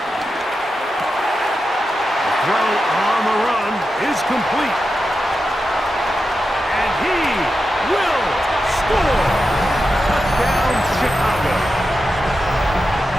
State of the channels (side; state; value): both; normal; correlation 0.90